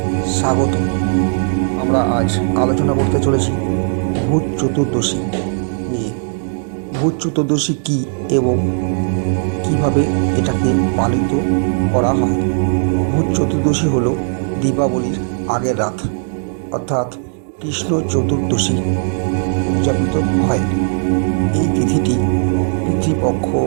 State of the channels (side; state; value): left; silent; digital silence